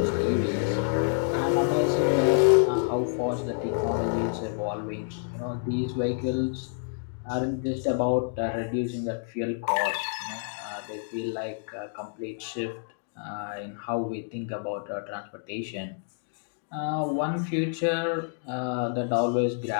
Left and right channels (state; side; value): silent; right; digital silence